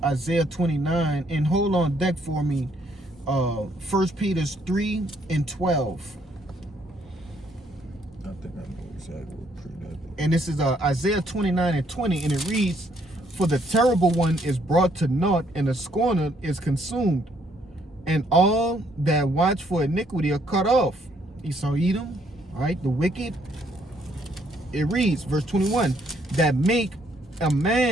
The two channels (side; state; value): both; normal; correlation 0.69